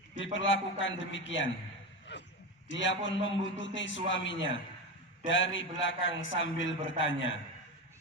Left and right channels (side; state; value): both; normal; correlation 0.19